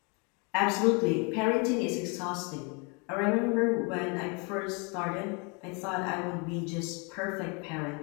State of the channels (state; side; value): quieter; right; 32.3 dB